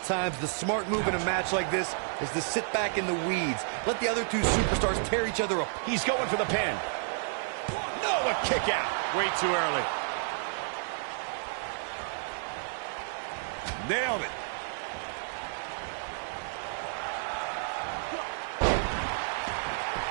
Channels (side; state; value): left; silent; digital silence